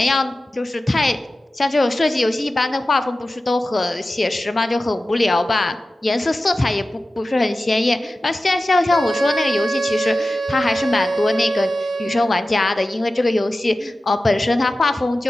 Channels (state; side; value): normal; both; correlation 0.95